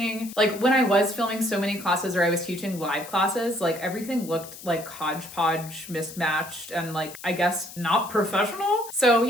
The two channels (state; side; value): noise; left; hiss, 15 dB below the sound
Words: like when I was filming so many classes or I was teaching live classes, like everything looked like hodgepodge, mismatched, and like, I guess not professional. So